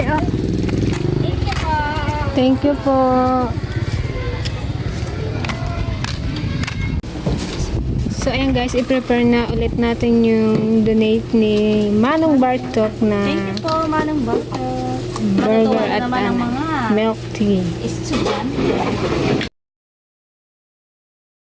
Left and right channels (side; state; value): both; identical; correlation 1.00